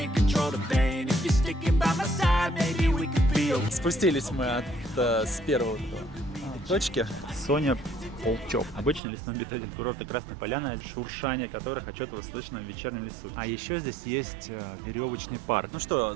control the pain. If you're sticking by my side, maybe we could be okay. Спустились мы с первой точки. Соня Полчок. Обычный лесной обитатель курорта Красная Поляна, шуршание которых отчетливо слышно в вечернем лесу. А еще здесь есть веревочный парк. Ну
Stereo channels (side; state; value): left; drops out; at 9.0 s